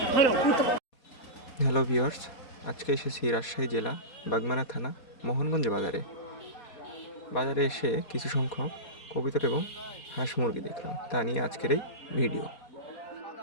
Hello viewers, আজকে এসেছি রাজশাহী জেলা বাগমারা থানা মোহনগঞ্জ বাজারে এসে কিছু সংখ্যক কবুতর এবং হাঁস মুরগি দেখলাম, তা নিয়ে আজকের এই ভিডিও।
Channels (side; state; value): right; late; 4.2 ms